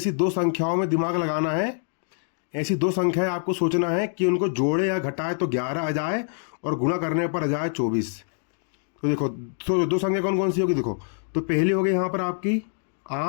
दो संख्याओं में दिमाग लगाना है। ऐसी दो संख्याएं आपको सोचना है कि उनको जोड़े या घटाए तो 11 आ जाए और गुणा करने पर आ जाए 24। तो देखो, तो दो संख्या कौन कौन सी होगी, देखो। तो पहली हो गई यहाँ पर आपकी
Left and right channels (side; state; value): right; silent; digital silence